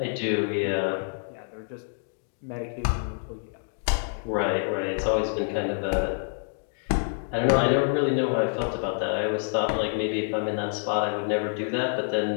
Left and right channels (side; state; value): right; silent; 60 dB below the other